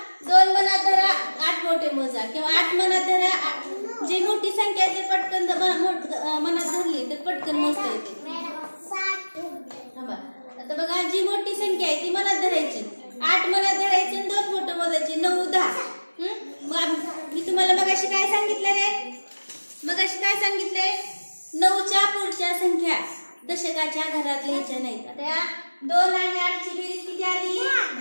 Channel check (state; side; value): inverted; both; correlation -1.00